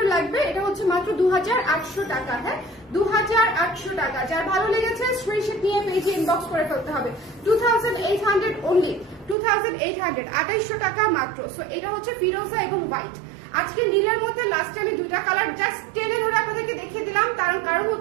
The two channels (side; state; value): left; drops out; at 9.3 s